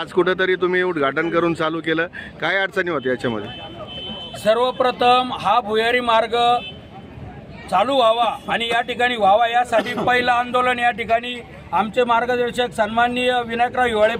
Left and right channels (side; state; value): both; identical; correlation 1.00